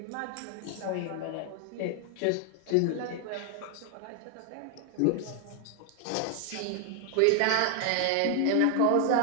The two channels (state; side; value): different; both; correlation 0.00